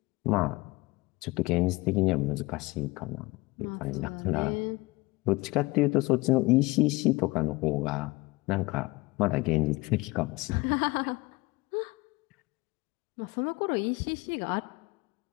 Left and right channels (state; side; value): quieter; right; 22.4 dB